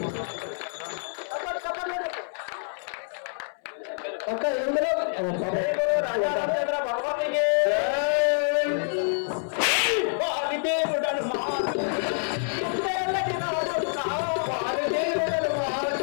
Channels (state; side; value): silent; right; 60 dB below the other